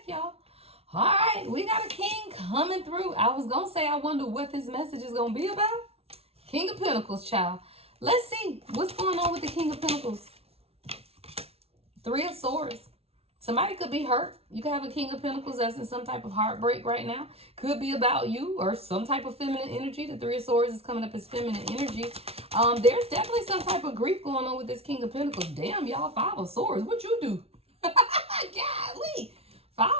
y'all. All right, we got a king coming through. I was gonna say I wonder what this message is gonna be about. King of Pentacles, child. Let's see what's going on with the King of Pentacles. Three of Swords. Somebody could be hurt. You could have a King of Pentacles that's in some type of heartbreak right now. Could be about you or some type of feminine energy. The Three of Swords is coming up as feminine energy. There's definitely some type of grief going on with this King of Pentacles. Damn, y'all, Five of Swords. What you do? Golly. Five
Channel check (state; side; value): late; left; 0.29 ms